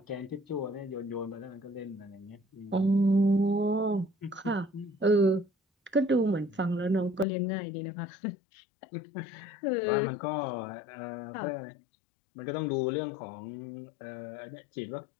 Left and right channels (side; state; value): right; drops out; at 7.2 s